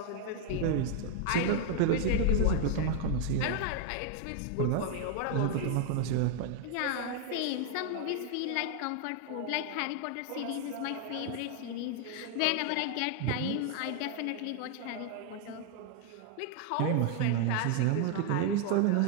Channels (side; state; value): both; different; correlation 0.00